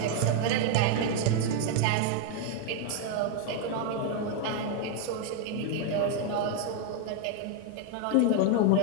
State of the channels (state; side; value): different; both; correlation 0.01